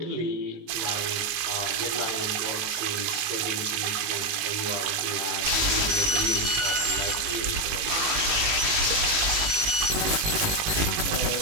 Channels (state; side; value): late; left; 18 ms